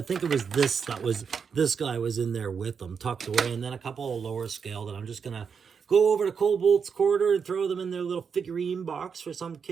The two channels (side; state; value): left; quieter; 6.3 dB